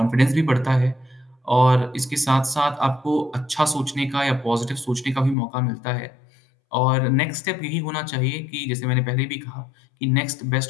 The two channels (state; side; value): drops out; right; at 5.4 s